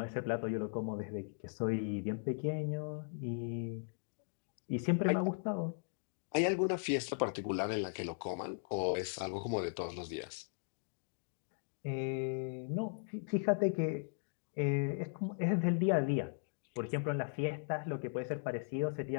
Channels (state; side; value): silent; right; digital silence